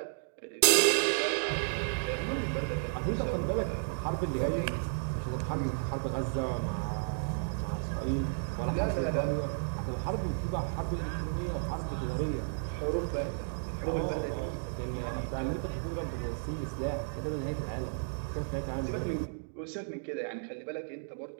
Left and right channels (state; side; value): silent; left; digital silence